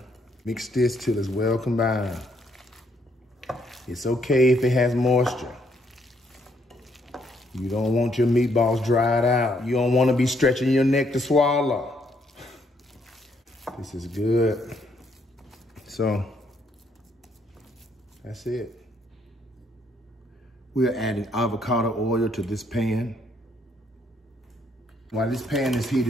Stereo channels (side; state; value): both; normal; correlation 0.70